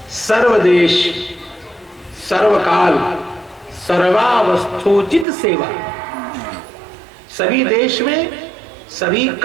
सर्वदेश सर्वकाल सर्वावस्थोचित सेवा। सभी देश में, सभी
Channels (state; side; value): drops out; left; at 5.2 s